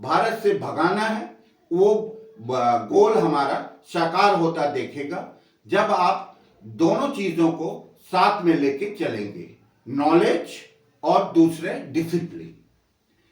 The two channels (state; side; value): identical; both; correlation 1.00